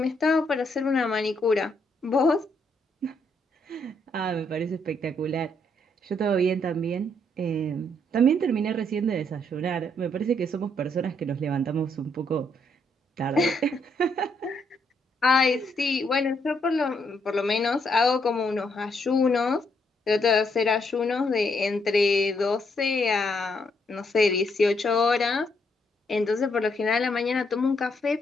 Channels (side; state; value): both; normal; correlation 0.74